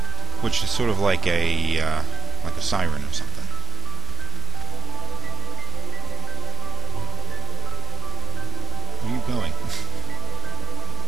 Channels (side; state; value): left; quieter; 4.7 dB